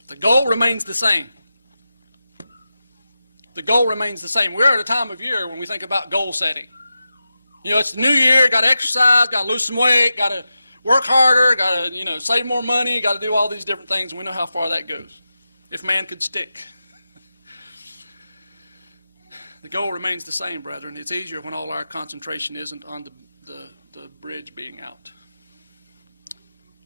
The goal remains the same. The goal remains the same. We're at a time of year when we think about goal setting. You know, it's the new year, got to exercise, got to lose some weight, got to work harder, got to, save more money, got to do all these different things, and we know how far that goes. If man could stick. The goal remains the same, brethren. It's easier when all our concentration isn't on the bridge being out.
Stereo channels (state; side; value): inverted; both; correlation -0.92